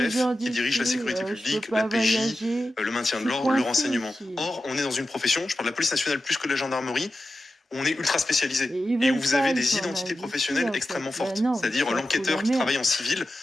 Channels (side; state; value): both; normal; correlation 0.92